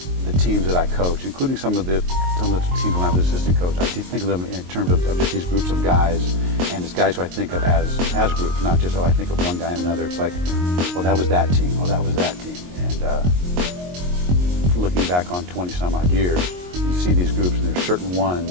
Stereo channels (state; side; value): late; left; 22 ms